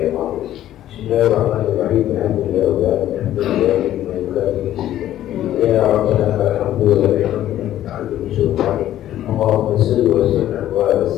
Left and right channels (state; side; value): quieter; right; 12.6 dB